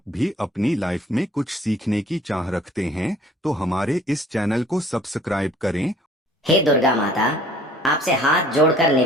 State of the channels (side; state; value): both; normal; correlation 0.54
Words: भी अपनी लाइफ में कुछ सीखने की चाह रखते हैं तो हमारे इस चैनल को सब्सक्राइब करें। हे दुर्गा माता, आपसे हाथ जोड़कर